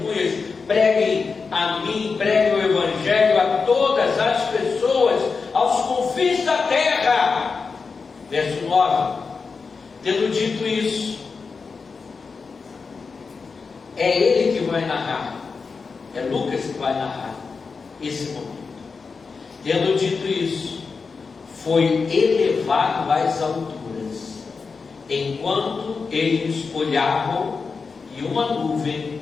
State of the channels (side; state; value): right; quieter; 4.8 dB